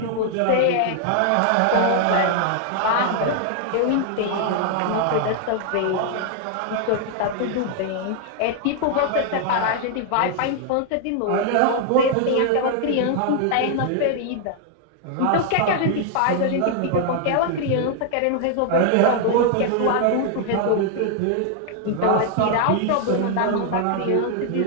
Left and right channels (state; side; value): different; both; correlation 0.00